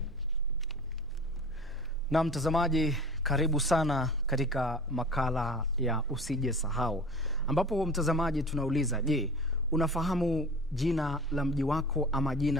Na mtazamaji, karibu sana katika makala ya usije sahau, ambapo mtazamaji tunauliza, je, unafahamu jina la mji wako ama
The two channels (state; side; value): noise; right; hum, 22 dB below the sound